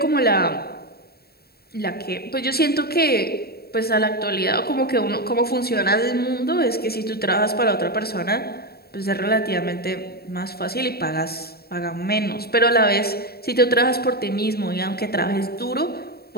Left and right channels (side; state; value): right; late; 0.45 ms